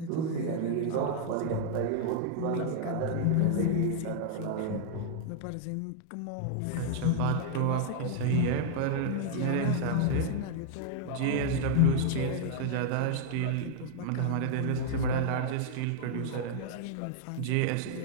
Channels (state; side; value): different; both; correlation -0.01